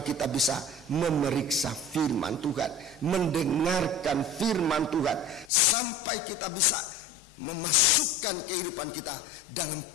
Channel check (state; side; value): drops out; right; at 5.5 s